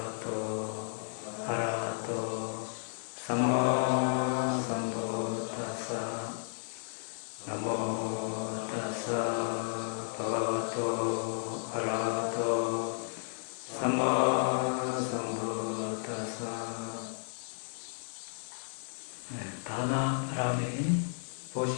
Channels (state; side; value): silent; right; digital silence